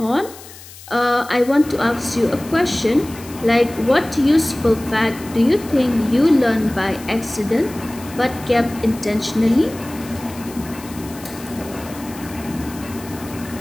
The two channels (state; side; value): noise; left; hiss, 18 dB below the sound